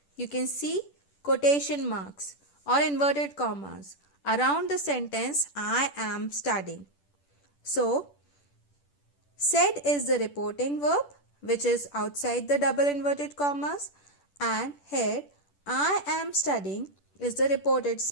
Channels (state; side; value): late; right; 10 ms